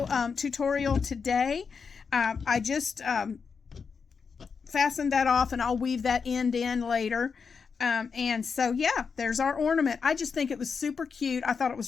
tutorial today. I just fastened that off and I'll weave that end in later. And so, yeah, there's our ornament. I just think it was super cute. I thought it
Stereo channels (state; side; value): quieter; right; 5.7 dB